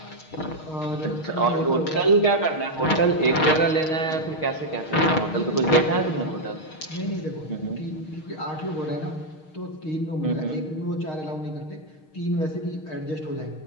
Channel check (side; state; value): right; late; 6.4 ms